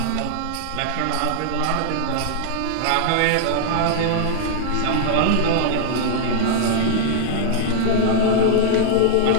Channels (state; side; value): different; both; correlation -0.01